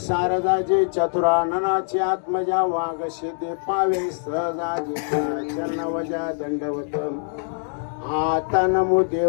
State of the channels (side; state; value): right; silent; digital silence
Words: चतुराननाची आत्मजा वाघ सिद्धी पावे सहजाजी चरणवजा दंडवत. आता नमो